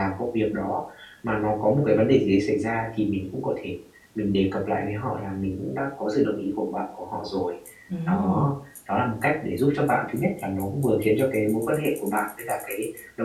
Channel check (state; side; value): identical; both; correlation 1.00